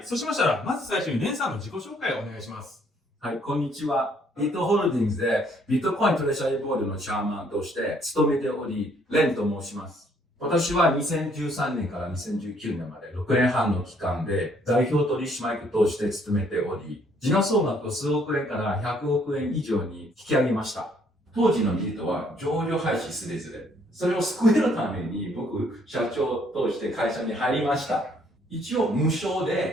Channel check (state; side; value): normal; both; correlation 0.65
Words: そうしましたらまず最初にレンさんの自己紹介をお願いします。はい、こんにちは。ビットホールディングスでビットコイントレジャリーボードのチャーマンとして務めており、レンと申します。私は2013年から2019年まで6年半の期間で代表取締役として務めており、時価総額を数億円から100億円以上に引き上げました。当時のビートは上場廃止すれずれ。それを救えるために僕、社長として会社に入りました。一応無償